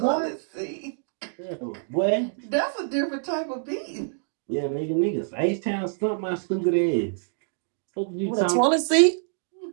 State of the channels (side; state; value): left; silent; digital silence